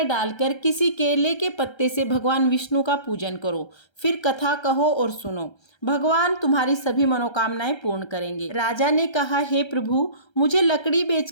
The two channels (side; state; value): right; late; 1.3 ms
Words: डालकर किसी केले के पत्ते से भगवान विष्णु का पूजन करो। फिर कथा कहो और सुनो, भगवान तुम्हारी सभी मनोकामनाएं पूर्ण करेंगे। राजा ने कहा, हे प्रभु, मुझे लकड़ी